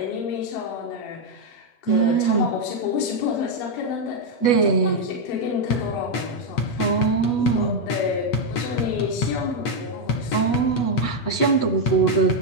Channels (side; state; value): right; late; 8.5 ms